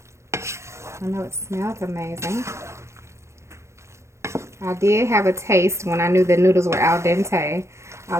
I know it smells amazing. I did have a taste when I knew the noodles were al dente. I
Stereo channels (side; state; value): left; late; 0.13 ms